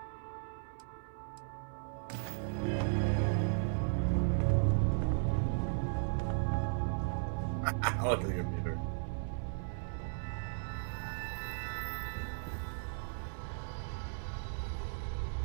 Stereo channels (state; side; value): silent; left; 54 dB below the other